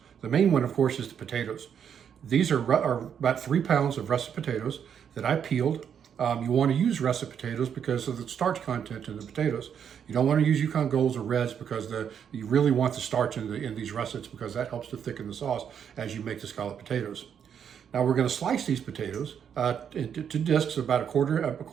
The main one, of course, is the potatoes. These are about 3 pounds of russet potatoes that I peeled. You want to use russet potatoes because of the starch content in the potatoes. You don't want to use Yukon Golds or Reds because you really want the starch in these russets because that helps to thicken the sauce as you make the scalloped potatoes. Now we're going to slice these potatoes into discs about a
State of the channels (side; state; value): left; quieter; 8.1 dB